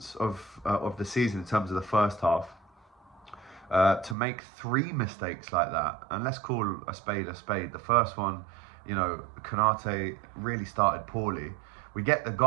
of the season in terms of the first half. To make three mistakes like that, and let's call a spade a spade. The first one, Konate really started poorly. We get the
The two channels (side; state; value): left; drops out; at 4.2 s